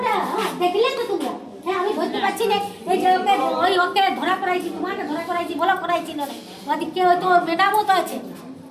দেখলে তো তোমরা, হ্যাঁ আমি ধরতে পারছি না, এই যে ওকে ওই ওকে ধরা করাইছি, তোমাকে ধরা করাইছি, বলো করাইছি না, ওদিকে হয়তো ম্যাডামও তো আছে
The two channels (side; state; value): both; identical; correlation 1.00